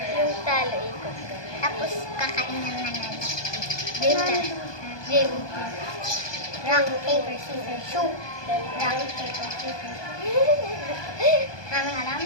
yung talo ikot. Tapos kakainan na natin. Game na. Game. Rock, paper, scissors, shoot. Rock, paper, scissors. Maraming alam?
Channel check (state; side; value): late; right; 1.2 ms